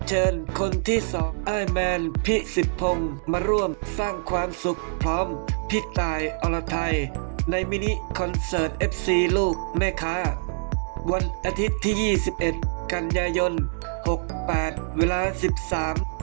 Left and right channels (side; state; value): left; silent; digital silence